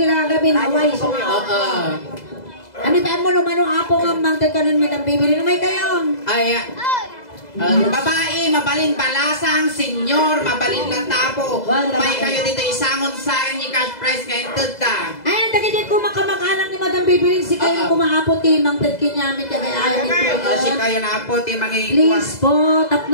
Away. Oo. Ano ba mo manong apo nga mangtag kanon Madam Bibili? Lumay kayo. Ayan. Babae, mabalin balasang, senyor, mabalin latapo. May kayo dito isangon sa akin ni cash price ngayon tagta. Ayan, dagay ko makamag-anak ni Madam Bibili. Si kayo kumaapo ti mangtag kinyamit kaya ayaw nito. Kasi kayo na po, ti mga Please po,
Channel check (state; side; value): late; right; 2.0 ms